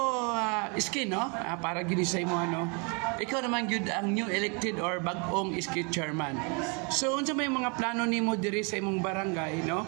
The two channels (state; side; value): quieter; left; 34.1 dB